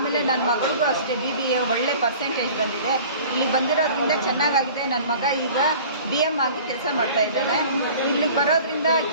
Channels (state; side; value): inverted; both; correlation -0.45